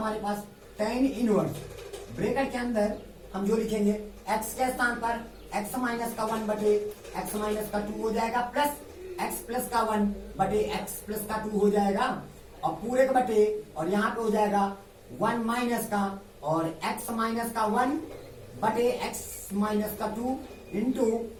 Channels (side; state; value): both; identical; correlation 1.00